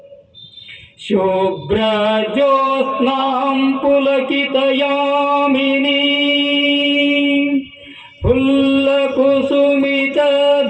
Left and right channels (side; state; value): both; identical; correlation 1.00